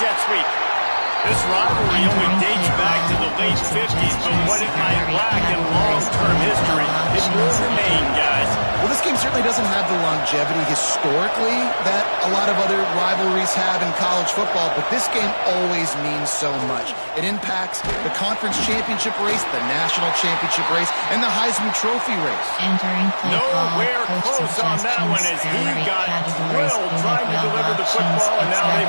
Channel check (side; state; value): both; inverted; correlation -1.00